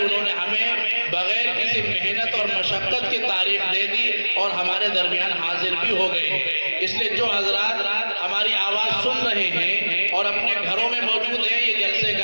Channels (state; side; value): inverted; both; correlation -1.00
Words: انہوں نے ہمیں بغیر کسی محنت اور مشقت کی تاریخ دے دی اور ہمارے درمیان حاضر بھی ہو گئے ہیں. اس لیے جو حضرات ہماری آواز سن رہے ہیں اور اپنے گھروں میں موجود ہیں، یہ جلسے